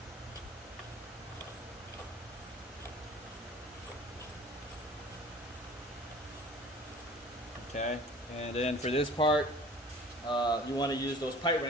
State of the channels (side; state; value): both; normal; correlation 0.46